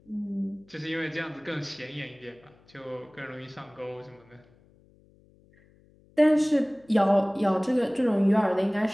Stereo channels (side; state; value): left; noise; hum, 30 dB below the sound